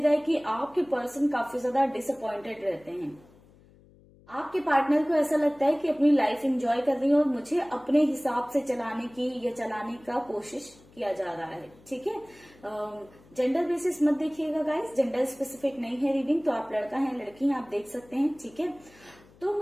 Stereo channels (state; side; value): noise; left; hum, 27 dB below the sound